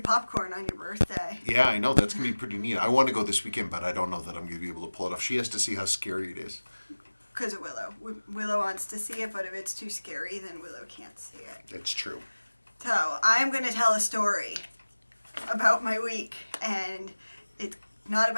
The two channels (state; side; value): inverted; both; correlation -1.00